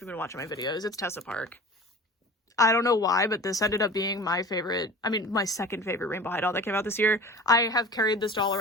been watching my videos. It's Tessa Park. I don't know why, but this ended up being my favorite, my second favorite Rainbow High doll that came out this year. I have carried this doll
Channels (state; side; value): normal; both; correlation 0.38